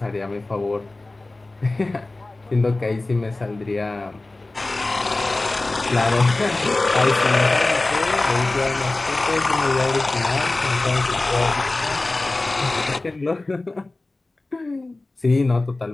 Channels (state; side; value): quieter; right; 3.0 dB